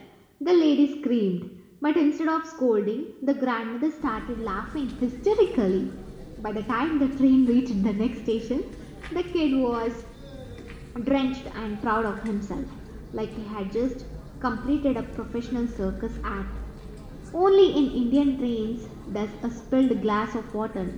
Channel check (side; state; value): both; identical; correlation 1.00